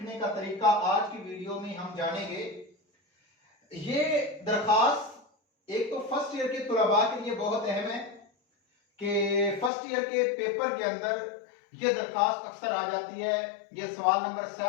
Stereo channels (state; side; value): drops out; right; at 9.7 s